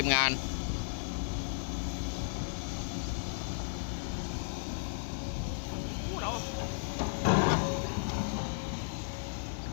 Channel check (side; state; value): right; silent; digital silence